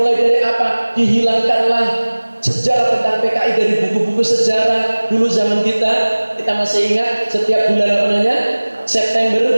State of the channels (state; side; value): inverted; both; correlation -1.00